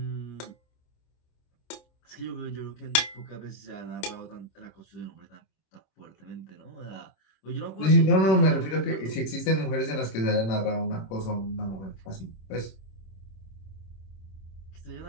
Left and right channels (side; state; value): right; late; 26 ms